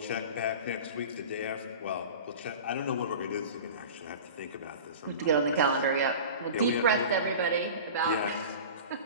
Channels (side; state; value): both; inverted; correlation -0.36